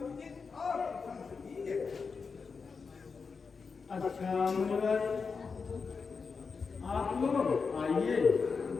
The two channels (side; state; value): right; quieter; 5.1 dB